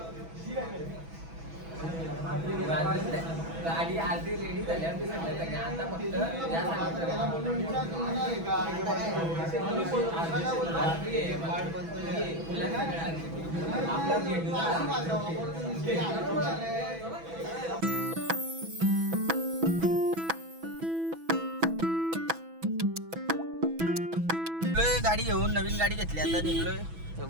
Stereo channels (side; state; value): left; late; 6.1 ms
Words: गाडी आधी रेडी झाल्यावर आता गाडी घेऊन नवीन गाडी घेतली. आता